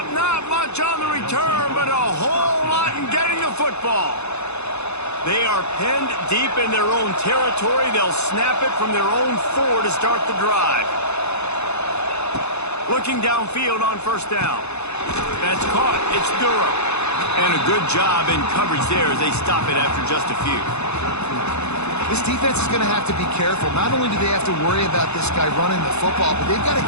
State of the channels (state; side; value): late; right; 0.81 ms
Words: not much on the return, but a whole lot in getting the football. They are penned deep in their own territory. They'll snap it from their own 4 to start the drive. Looking downfield on first down. That's caught. It's Durham. And a good job in coverage there as they stop it after just a few. This defense is going to have to be careful. Not only do they have to worry about this guy running the football, but they've got to